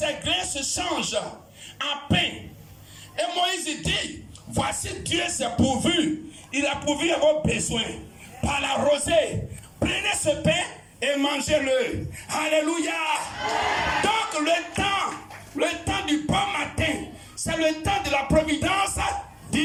grains se changent en pain. Et Moïse dit, voici Dieu s'est pourvu. Il a pourvu à vos besoins. Par la rosée. Prenez ce pain et mangez-le. Alléluia. Donc le temps du bon matin, c'est le temps de la providence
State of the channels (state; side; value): identical; both; correlation 1.00